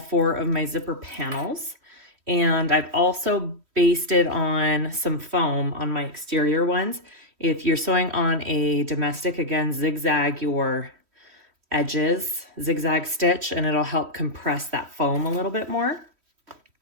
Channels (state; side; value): late; left; 3.1 ms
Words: of my zipper panels. And I've also basted on some foam on my exterior ones. If you're sewing on a domestic, again, zigzag your edges, zigzag stitch, and it'll help compress that foam a little bit more.